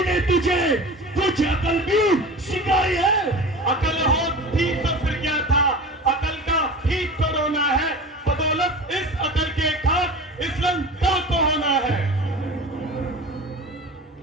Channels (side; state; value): both; normal; correlation 0.35